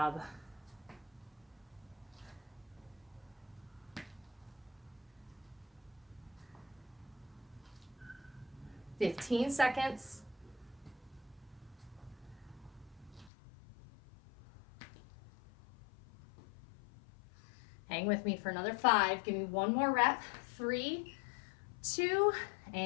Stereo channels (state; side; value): drops out; right; at 13.3 s